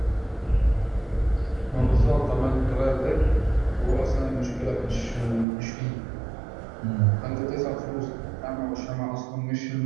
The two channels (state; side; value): drops out; left; at 5.5 s